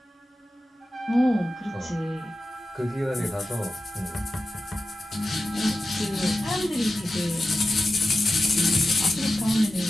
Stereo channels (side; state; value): both; normal; correlation 0.93